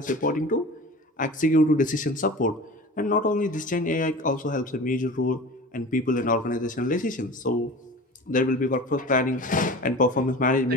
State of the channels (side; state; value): both; normal; correlation 0.37